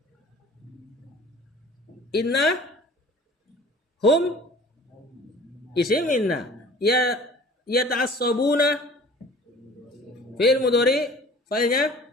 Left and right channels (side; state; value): both; normal; correlation 0.47